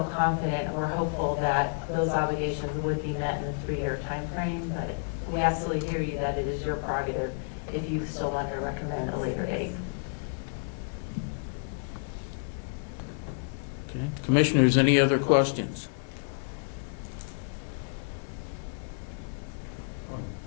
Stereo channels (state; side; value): silent; right; digital silence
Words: confident and we're hopeful that those obligations would be met in the 3-year time frame, but we absolutely hear you that it is your prerogative if you still want to recommend a later date. Okay. Commissioners, any other questions?